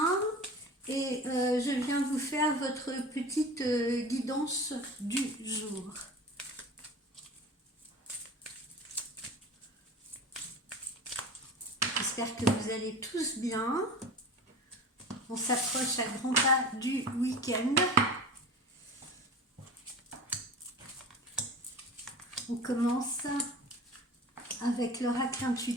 et je viens vous faire votre petite guidance du jour. J'espère que vous allez tous bien. On s'approche à grands pas du week-end. On commence avec l'oracle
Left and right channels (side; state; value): both; normal; correlation 0.36